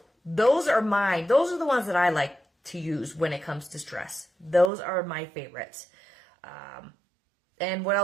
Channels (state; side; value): drops out; left; at 4.7 s